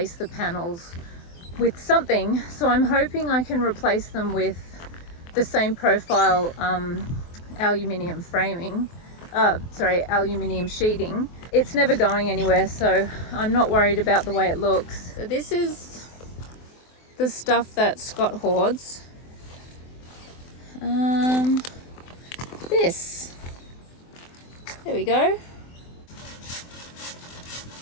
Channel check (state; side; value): late; right; 23 ms